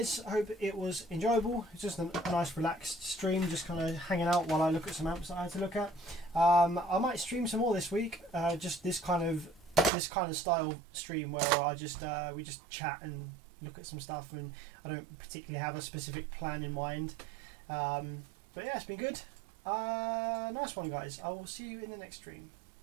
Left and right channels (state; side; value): drops out; left; at 9.9 s